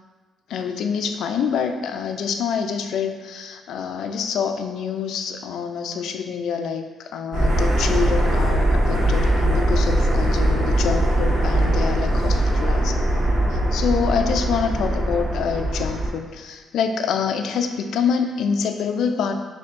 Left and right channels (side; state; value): both; normal; correlation 0.79